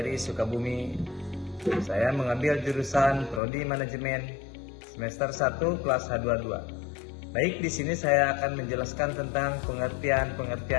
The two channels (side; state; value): right; drops out; at 3.4 s